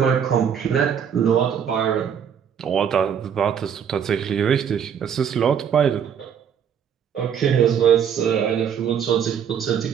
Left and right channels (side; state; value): left; quieter; 8.1 dB